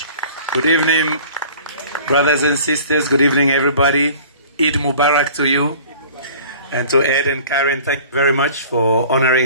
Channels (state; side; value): inverted; both; correlation -0.47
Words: Good evening, brothers and sisters. Good evening, everybody. Eid Mubarak to you. And to Ed and Karen, thank you very much for